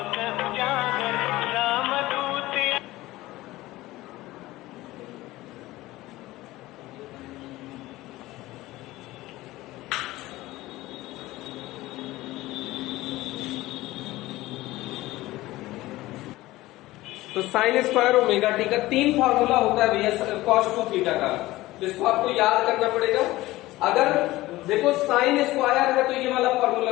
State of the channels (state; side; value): quieter; right; 17.8 dB